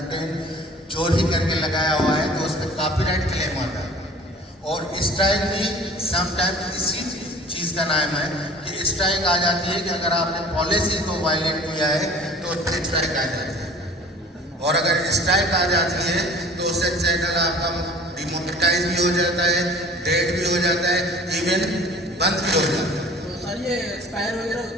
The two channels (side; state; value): both; normal; correlation 0.46